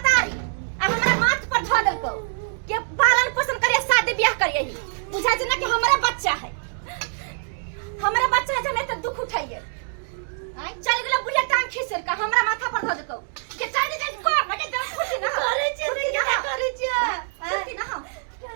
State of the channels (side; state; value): left; silent; digital silence